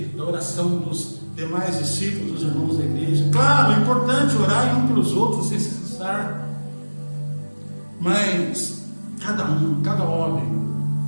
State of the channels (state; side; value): inverted; both; correlation -1.00